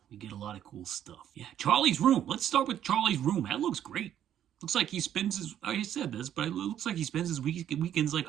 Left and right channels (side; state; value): left; quieter; 10.5 dB